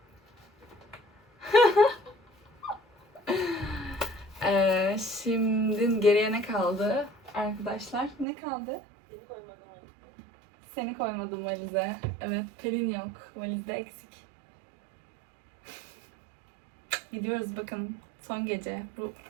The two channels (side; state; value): left; drops out; at 8.2 s